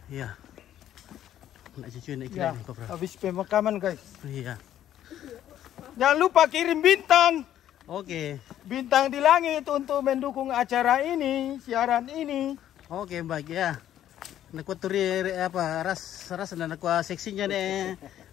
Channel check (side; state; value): right; quieter; 11.5 dB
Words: Iya. Nak cucu nak Ya, kira Kopral. habis pemakaman guys. Iya. Jangan lupa kirim bintang. Oke. Bintang di langit untuk mendukung acara ini, siaran ini. Oke, baik ya. Nak turi apa ras dan nak seksinya ne